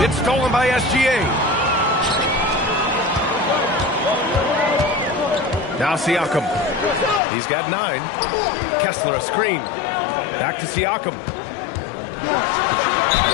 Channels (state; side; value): drops out; right; at 7.2 s